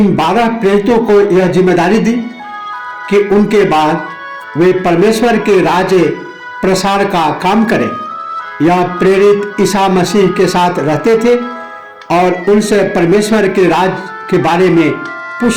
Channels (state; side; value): identical; both; correlation 1.00